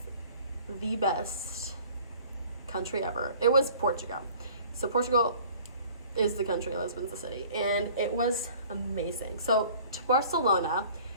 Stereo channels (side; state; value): both; inverted; correlation -0.50